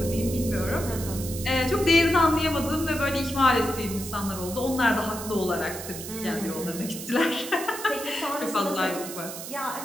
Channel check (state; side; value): noise; right; hiss, 10 dB below the sound